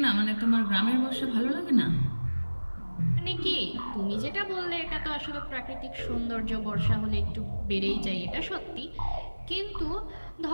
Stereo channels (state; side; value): inverted; both; correlation -1.00